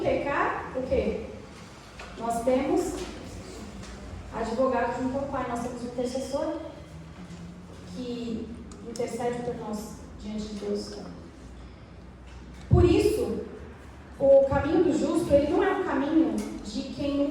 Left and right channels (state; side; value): identical; both; correlation 1.00